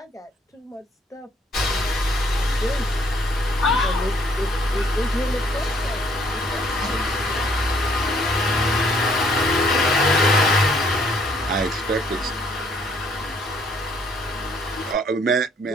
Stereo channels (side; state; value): both; normal; correlation 0.65